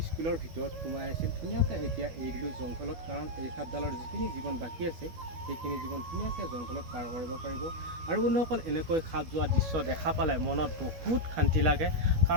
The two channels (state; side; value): late; left; 13 ms